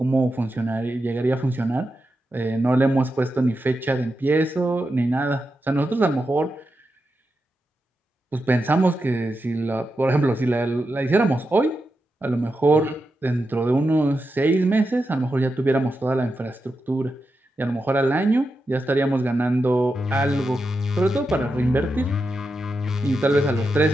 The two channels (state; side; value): normal; both; correlation 0.88